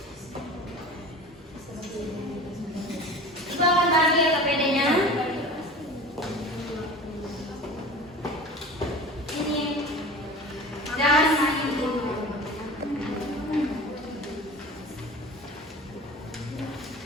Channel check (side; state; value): both; normal; correlation 0.37